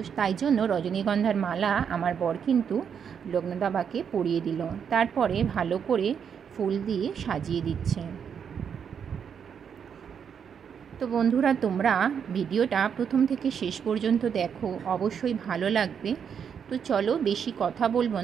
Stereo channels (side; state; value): left; quieter; 7.4 dB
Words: তাই জন্য রজনীগন্ধার মালা আমার বর কিন্তু লোকনাথ বাবাকে পরিয়ে দিল। তারপরে ভালো করে ফুল দিয়ে সাজিয়ে দিচ্ছে। তো বন্ধুরা, তোমরা ভিডিওটা প্রথম থেকে শেষ পর্যন্ত দেখো, অবশ্যই ভালো লাগবে। তো চলো বেশি কথা বলবো